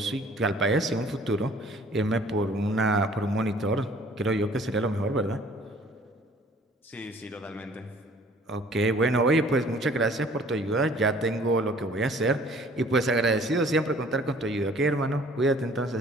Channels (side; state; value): both; normal; correlation 0.54